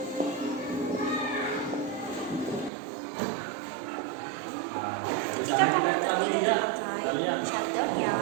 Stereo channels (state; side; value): drops out; left; at 2.7 s